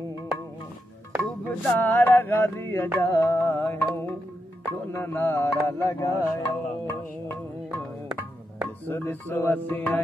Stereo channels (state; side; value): normal; both; correlation 0.85